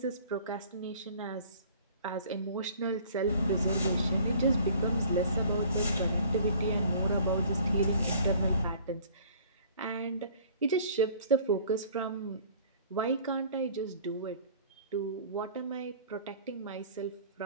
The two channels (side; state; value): both; inverted; correlation -0.51